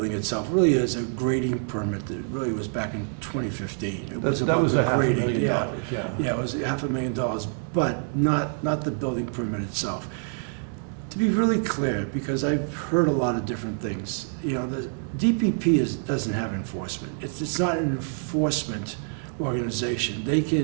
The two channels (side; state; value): left; silent; 57 dB below the other